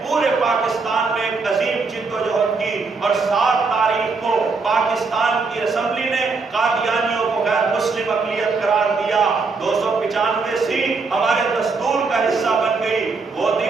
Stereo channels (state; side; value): quieter; left; 4.3 dB